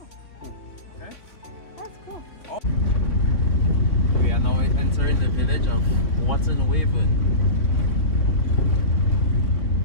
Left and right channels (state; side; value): late; right; 3.6 ms